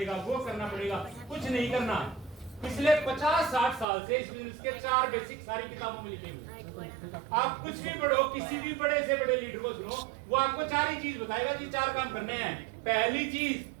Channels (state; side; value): drops out; left; at 3.9 s